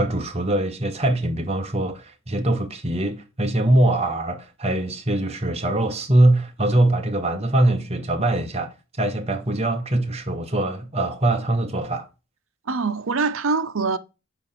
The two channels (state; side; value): normal; both; correlation 0.68